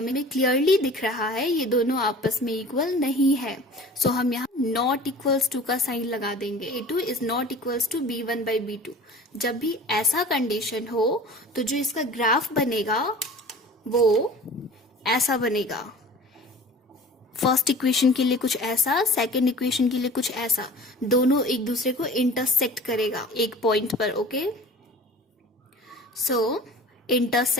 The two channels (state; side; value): normal; both; correlation 0.42